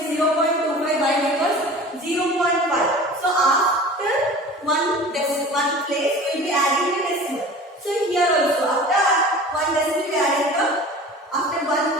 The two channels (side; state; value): both; normal; correlation 0.40